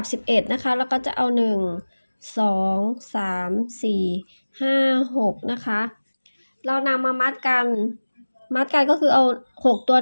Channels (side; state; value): both; inverted; correlation -1.00